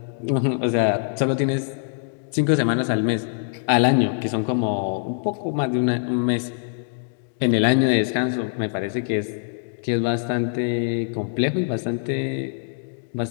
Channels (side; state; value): right; silent; digital silence